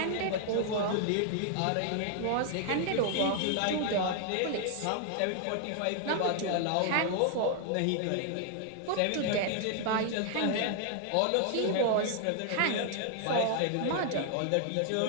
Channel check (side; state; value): both; different; correlation 0.00